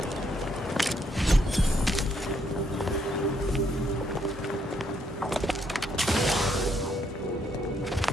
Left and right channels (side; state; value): both; normal; correlation 0.73